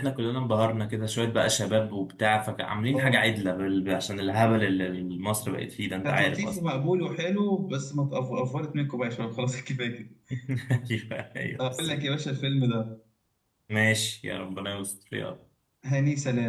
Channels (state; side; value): identical; both; correlation 1.00